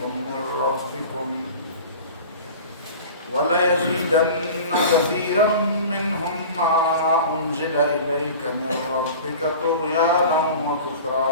من ربكم وليزيدن كثيرا منهم ما أنزل إليك من ربك طغيانا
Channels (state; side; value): inverted; both; correlation -0.38